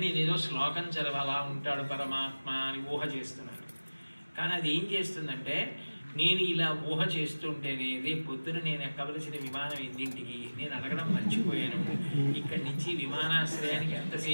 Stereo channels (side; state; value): both; inverted; correlation -1.00